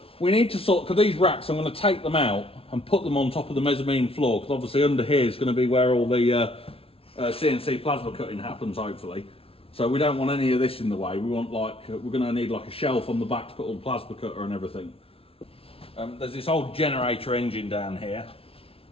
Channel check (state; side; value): late; right; 0.27 ms